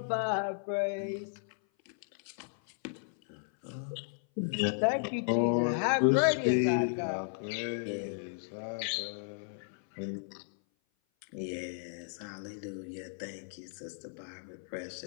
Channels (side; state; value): right; silent; 55 dB below the other